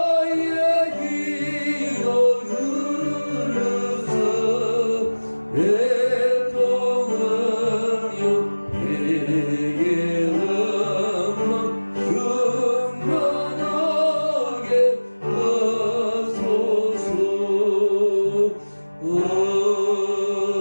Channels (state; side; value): inverted; both; correlation -1.00